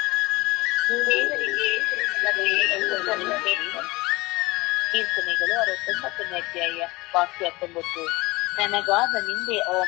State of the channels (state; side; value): quieter; right; 22.0 dB